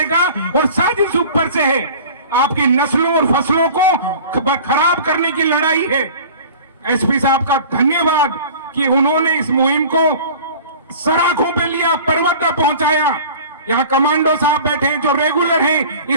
और साजिश ऊपर से है, आपकी नस्लों और फसलों को खराब करने की लड़ाई है। एसपी साहब का धन्यवाद कि उन्होंने इस मुहिम को सराखों पे लिया, पर्वत तक पहुंचाया। यहाँ कमांडो साहब बैठे हैं जो रेगुलर हैं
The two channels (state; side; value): inverted; both; correlation -0.42